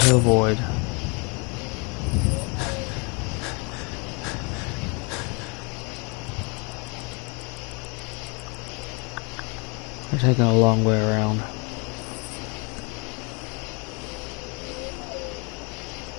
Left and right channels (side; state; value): right; quieter; 32.6 dB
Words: avoid. We're taking a long way around.